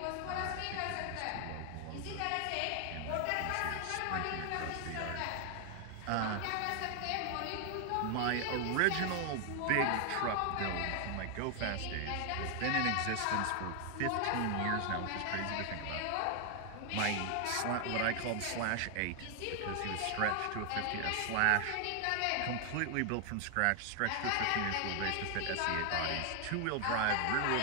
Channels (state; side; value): different; both; correlation 0.00